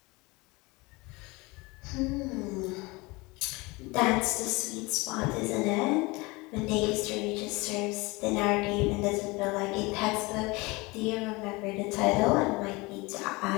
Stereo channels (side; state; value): right; quieter; 24.3 dB